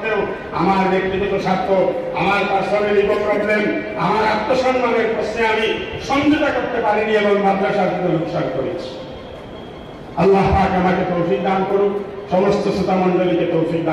আমার ব্যক্তিগত স্বার্থ, আমার পার্সোনাল ইগো প্রবলেম, আমার আত্মসম্মানের প্রশ্নে আমি সমঝোতা করতে পারিনি এবং মাদ্রাসার জন্য লোকসান করেছি। আল্লাহ পাক আমাকে তৌফিক দান করুক, সমস্ত শ্রোতা মণ্ডলীকে তৌফিক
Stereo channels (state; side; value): identical; both; correlation 1.00